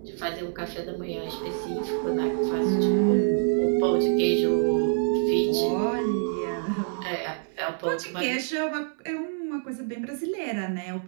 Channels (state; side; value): silent; left; 60 dB below the other